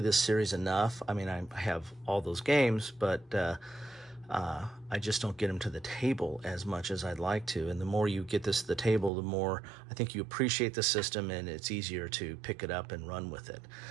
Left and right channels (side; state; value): left; drops out; at 9.1 s